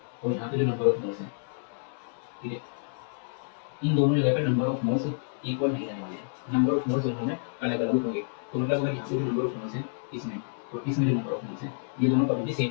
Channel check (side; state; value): right; silent; 59 dB below the other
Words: और यहाँ पे जो नंबर ऑफ मोल्स हैं, ठीक है, इन दोनों जगह पे नंबर ऑफ मोल्स इक्वल नहीं रहने वाले हैं, नंबर ऑफ मोल्स दोनों में अलग अलग होंगे। तो मतलब अगर यहाँ पे जो नंबर ऑफ मोल्स है इसमें, तो इसमें जो नंबर ऑफ मोल्स है ये दोनों कभी भी